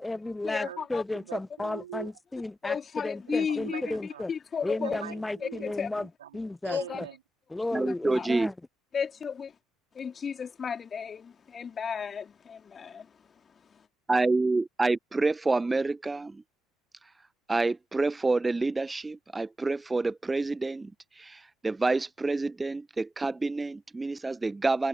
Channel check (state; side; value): normal; both; correlation 0.92